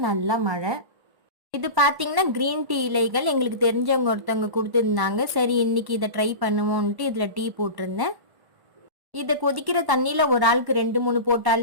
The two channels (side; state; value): left; late; 1.1 ms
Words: நல்லா மழை. இது பார்த்தீங்கன்னா கிரீன் டீ இலைகள் எங்களுக்கு தெரிஞ்சவங்க ஒருத்தவங்க கொடுத்துருந்தாங்க. சரி இன்னைக்கு இதை ட்ரை பண்ணுவோன்ட்டு இதில் டீ போட்டிருந்தேன். இதை கொதிக்கிற தண்ணியில் ஒரு ஆளுக்கு 2-3